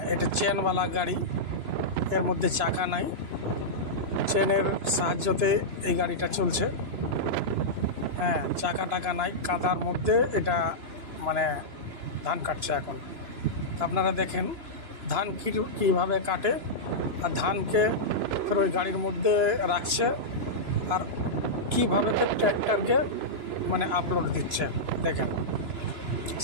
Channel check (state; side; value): late; left; 3.0 ms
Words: এটা চেনওয়ালা গাড়ি, এর মধ্যে চাকা নাই, চেনের সাহায্যতে এই গাড়িটা চলছে। হ্যাঁ, চাকা টাকা নাই, কাদার মধ্যে এটা মানে ধান কাটছে এখন। আপনারা দেখেন ধান কীভাবে কাটে, আর ধানকে ফের ওই গাড়ির মধ্যে রাখছে, আর কীভাবে ফের ট্র্যাক্টরকে মানে আপলোড দিচ্ছে। দেখেন,